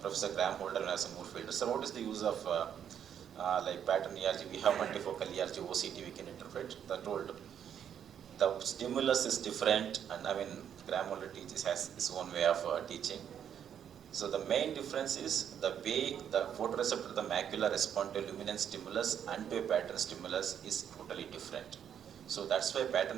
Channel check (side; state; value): left; quieter; 8.9 dB